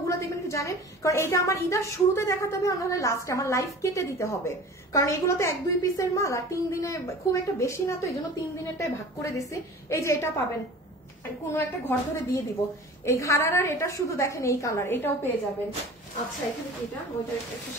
দেখবেন কি জানেন, কারণ এটা আমার ইদার শুরুতে দেখাতে হবে, নাহলে লাস্টে আমার লাইফ কেটে দিতে হবে, কারণ এগুলো তো 1-2 পিসের মাল আর 3 দিনে খুব একটা বেশি না, তো এই জন্য 3 দিনেরটাই ভাগ করে দিছি। এই যে এটা পাবেন কোনো একটা ঘর ধরে দিয়ে দিব, এই ঘাড়ার এটা শুধু দেখেন এই কালার, এটাও পেয়ে যাবেন। আচ্ছা এখানে এটা ওইটার একটা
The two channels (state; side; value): normal; both; correlation 0.40